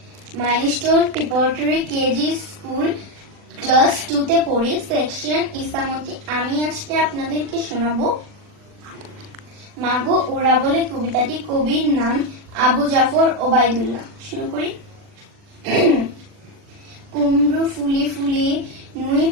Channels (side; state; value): left; late; 40 ms